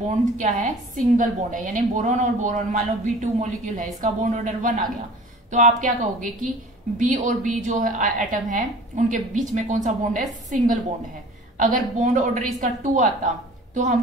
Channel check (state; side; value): normal; both; correlation 0.44